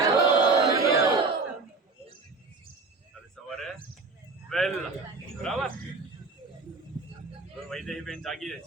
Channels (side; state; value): left; quieter; 3.9 dB